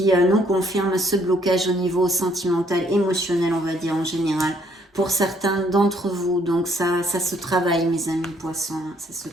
nous confirme ce blocage au niveau sentimental, émotionnel, on va dire en général, pour certains d'entre vous. Donc ça se travaille, mes amis poissons, hein, ça se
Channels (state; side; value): normal; both; correlation 0.66